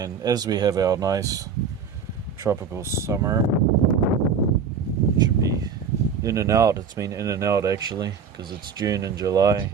as we have our nice tropical summer, it should be in and out. It's been in and out actually, because it's June and July,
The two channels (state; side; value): quieter; left; 6.2 dB